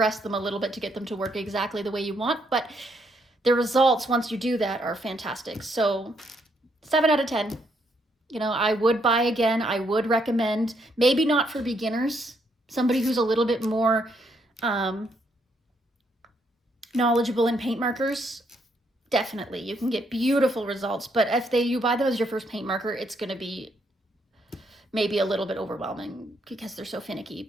them a little bit to get them to work exactly the way you want, but the results once you do that are fantastic. So 7 out of 10. I would buy again. I would recommend, maybe not for beginners, somebody who's a little bit more knowledgeable in paint markers. Definitely, you can get beautiful results, but if you buy them as your first paint marker, it's going to be maybe a little bit overwhelming because they're so finicky.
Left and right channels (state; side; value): normal; both; correlation 0.74